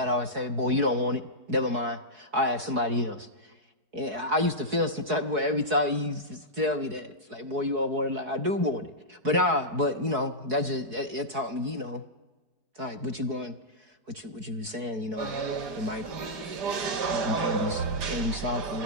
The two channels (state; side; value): late; left; 4.7 ms